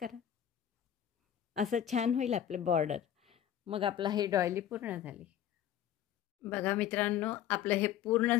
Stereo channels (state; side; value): quieter; right; 10.5 dB